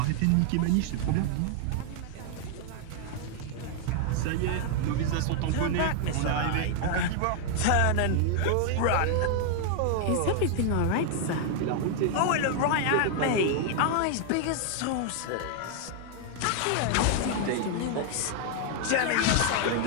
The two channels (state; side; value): different; both; correlation 0.00